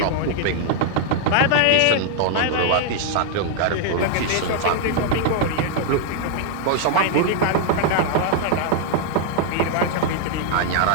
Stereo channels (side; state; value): both; different; correlation 0.00